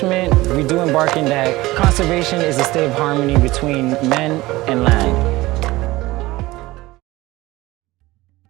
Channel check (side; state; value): left; quieter; 19.1 dB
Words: we do embarking that conservation is a state of harmony between men and land.